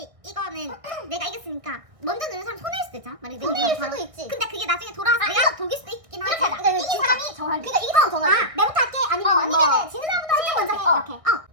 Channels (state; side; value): late; left; 1.6 ms